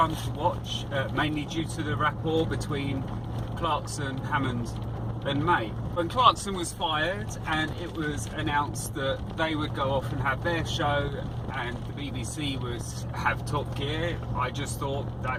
to watch, mainly due to the rapport between Clarkson, Hammond and May. When Clarkson was fired and it was announced that they would go off and have their show and the BBC would have Top Gear, I just thought,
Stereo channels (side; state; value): both; identical; correlation 1.00